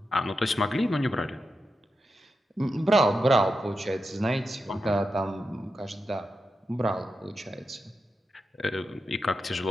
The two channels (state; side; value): normal; both; correlation 0.88